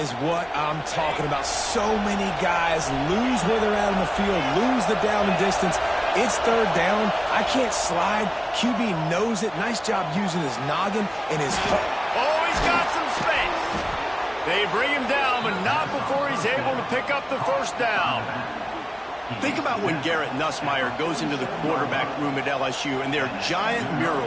what I'm talking about. So many guys lose where they're at on the field, lose the down and distance. It's third down. I can't slide. QB knows it. Nice job using his noggin and his hook. Oh, he's got some space. They bring him down, but not before he's able to pick up the first down. Think about when Garrett Nussmeier goes into the quarterback room at LSU, and there are giant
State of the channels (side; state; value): both; identical; correlation 1.00